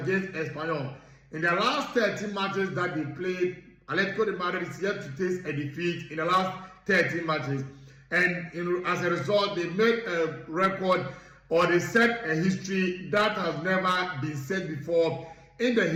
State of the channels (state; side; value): identical; both; correlation 1.00